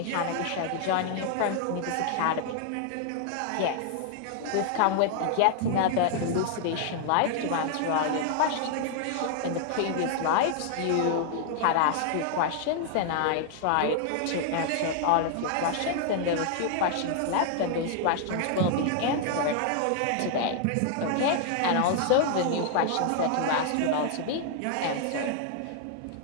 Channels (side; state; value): both; different; correlation 0.00